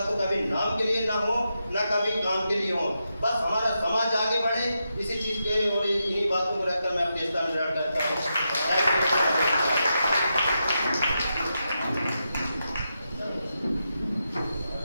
तो कभी नाम के लिए ना हो, ना कभी काम के लिए हो। बस हमारा समाज आगे बढ़े, इसी चीज के और इन्हीं बातों को रखकर मैं अपने स्थान ग्रहण करता हूँ।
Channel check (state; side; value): inverted; both; correlation -0.86